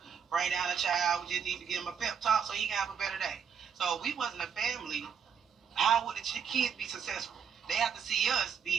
bring down a child. We just need to give him a pep talk so he can have a better day. So if we wasn't a family, how would the kids be successful? They have to see us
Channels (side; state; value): left; quieter; 7.2 dB